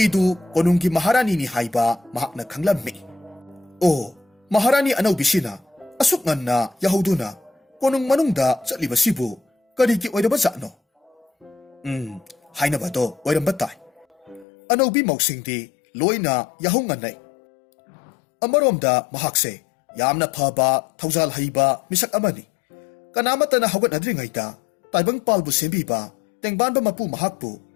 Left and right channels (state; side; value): drops out; right; at 14.5 s